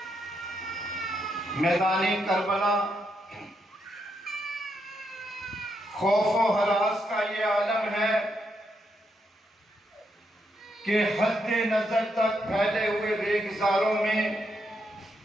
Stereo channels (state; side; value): normal; both; correlation 0.80